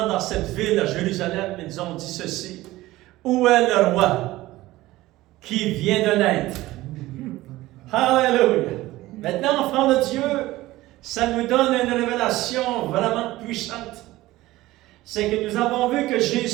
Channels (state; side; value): quieter; left; 17.5 dB